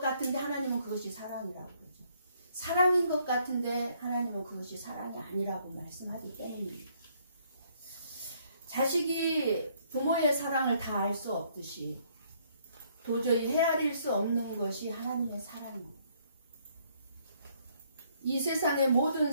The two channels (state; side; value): inverted; both; correlation -0.67